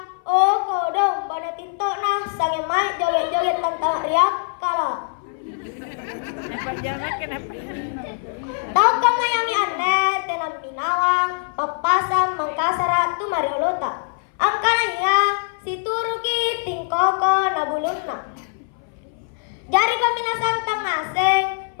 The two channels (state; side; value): silent; right; 60 dB below the other